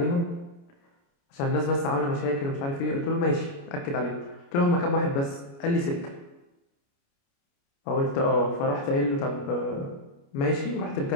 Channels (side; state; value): right; late; 29 ms